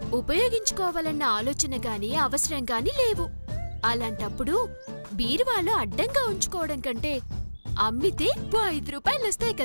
ఉపయోగించుకోవాలన్న ఆలోచన గాని అవసరం గాని లేవు. అలాంటప్పుడు బీరువాలో అడ్డంగా ఉంచుకోవడం కంటే అమ్మితే 5 రూపాయలు వస్తాయి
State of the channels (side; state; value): both; inverted; correlation -1.00